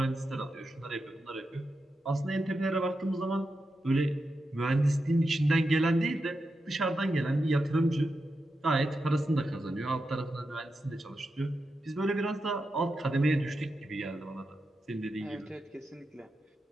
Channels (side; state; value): both; normal; correlation 0.88